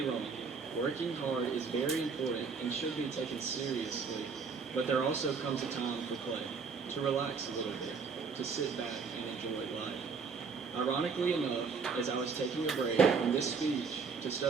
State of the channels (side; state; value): left; quieter; 5.2 dB